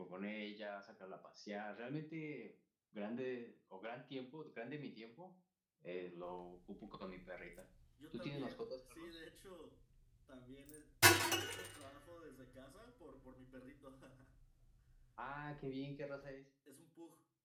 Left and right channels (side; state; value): both; identical; correlation 1.00